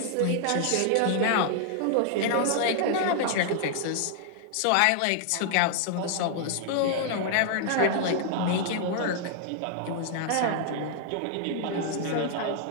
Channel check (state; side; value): different; both; correlation -0.01